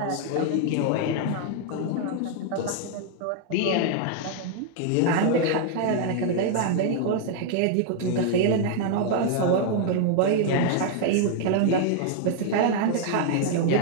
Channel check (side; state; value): both; different; correlation 0.00